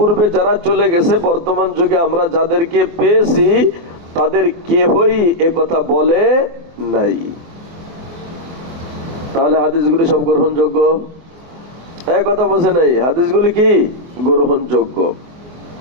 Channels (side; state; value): left; late; 24 ms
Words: যারা চলে গেছে বর্তমান যুগে আমরা যাদেরকে পেয়েছি তাদের কেউই এ কথা বলে নাই। তাহলে হাদিসগুলি সব গ্রহণযোগ্য? এক কথা বলছে নাই, হাদিসগুলি কি গ্রহণযোগ্য।